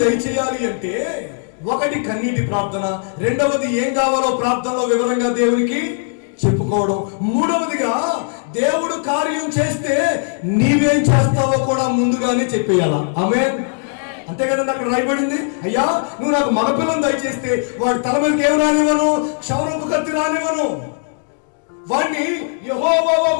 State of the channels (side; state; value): right; silent; 67 dB below the other